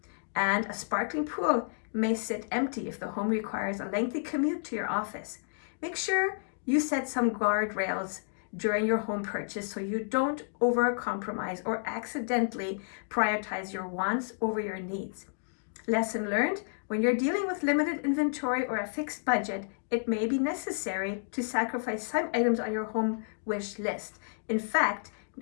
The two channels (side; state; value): right; silent; digital silence